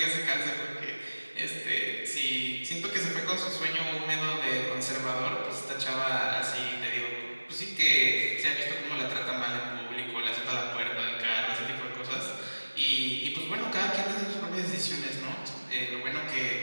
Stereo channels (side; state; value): both; inverted; correlation -1.00